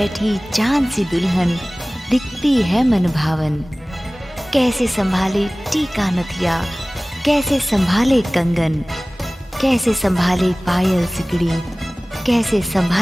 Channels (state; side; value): normal; both; correlation 0.98